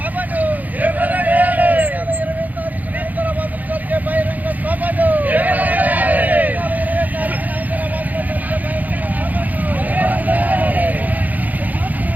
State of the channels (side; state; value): left; late; 0.080 ms